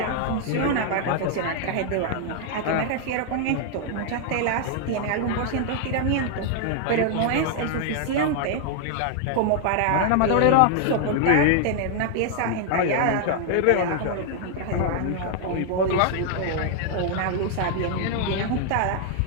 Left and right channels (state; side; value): different; both; correlation 0.00